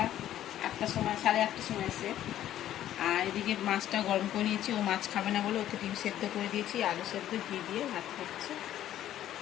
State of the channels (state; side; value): quieter; right; 12.2 dB